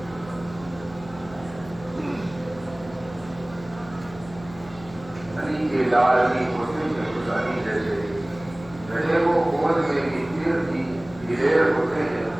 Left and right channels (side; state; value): left; noise; hum, 18 dB below the sound